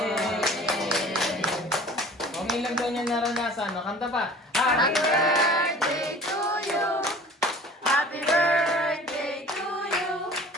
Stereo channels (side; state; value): both; normal; correlation 0.45